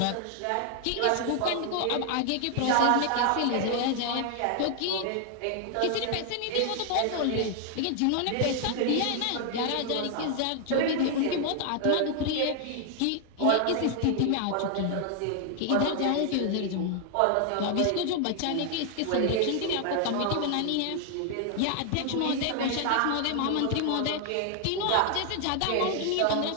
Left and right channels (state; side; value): different; both; correlation 0.00